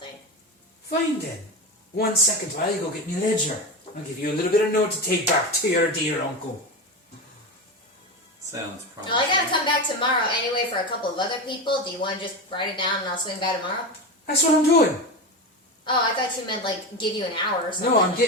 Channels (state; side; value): normal; both; correlation 0.20